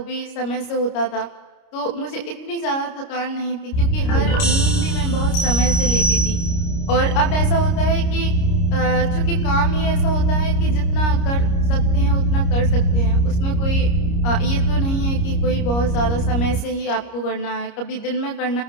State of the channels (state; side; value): late; right; 29 ms